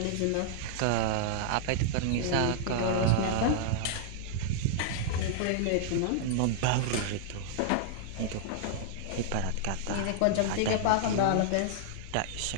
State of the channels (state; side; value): different; both; correlation -0.01